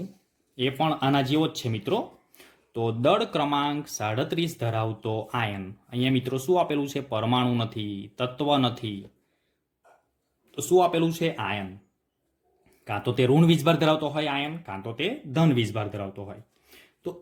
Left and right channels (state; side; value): identical; both; correlation 1.00